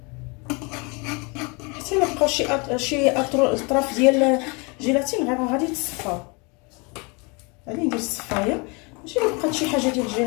حتى الا بقاو شي اطراف ديال الجيلاتين غادي تصفاو. غادي ندير الصفايه ماشي الا بقات شي حاجه ديال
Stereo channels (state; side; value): quieter; right; 30.3 dB